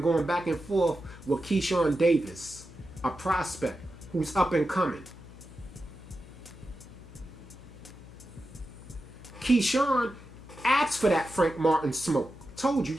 going back and forth with Keyshawn Davis, a prospect who's up and coming. Keyshawn asked for that Frank Martin smoke. Told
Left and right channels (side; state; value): left; noise; hum, 18 dB below the sound